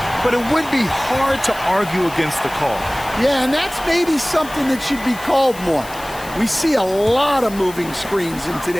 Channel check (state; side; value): noise; left; hiss, 17 dB below the sound